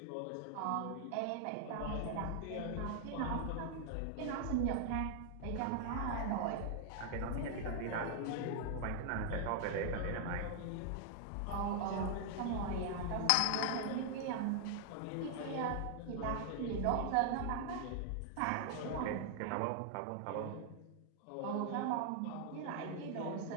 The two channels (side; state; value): both; different; correlation 0.00